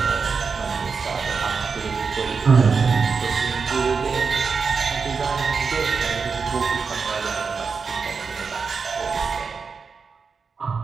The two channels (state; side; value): quieter; left; 5.2 dB